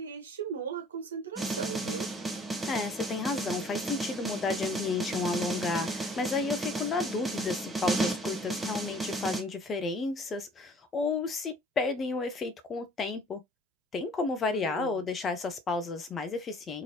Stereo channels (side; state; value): both; normal; correlation 0.54